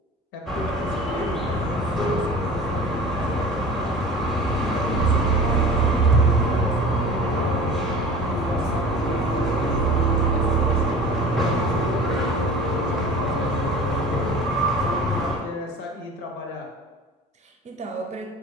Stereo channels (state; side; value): normal; both; correlation 0.40